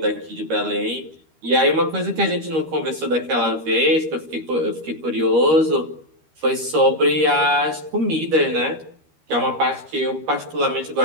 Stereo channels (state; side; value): late; left; 13 ms